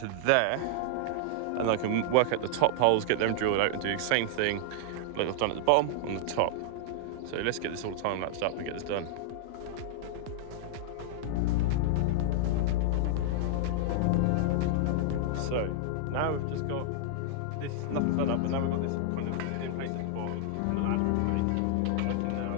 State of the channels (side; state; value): both; different; correlation -0.01